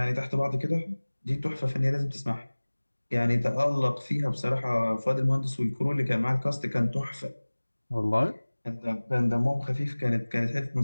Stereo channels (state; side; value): inverted; both; correlation -1.00